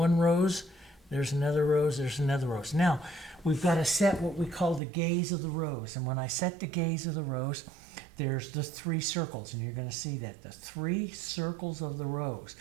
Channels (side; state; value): left; drops out; at 4.8 s